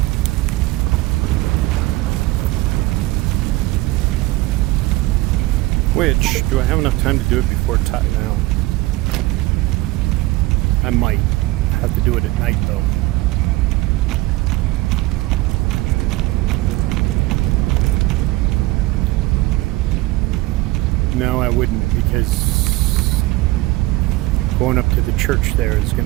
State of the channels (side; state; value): left; quieter; 19.5 dB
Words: Which, do I have enough time to do it before now? I might have to do it at night, though. No, I wouldn't, because going up to the church there is